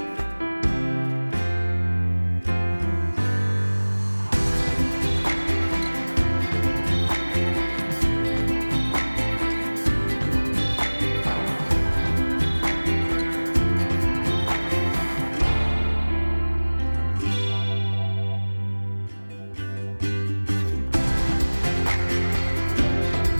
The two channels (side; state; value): both; inverted; correlation -1.00